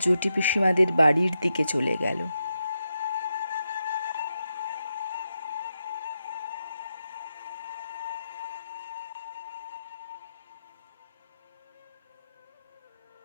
জটি পিসিমাদের বাড়ির দিকে চলে গেল।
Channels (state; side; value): inverted; both; correlation -0.86